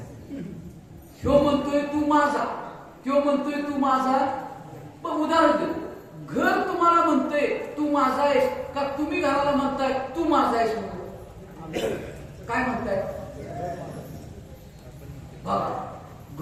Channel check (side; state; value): both; identical; correlation 1.00